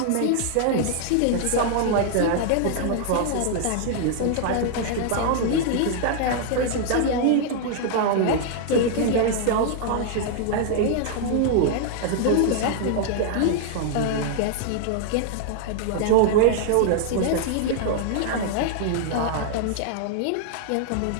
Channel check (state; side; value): different; both; correlation 0.00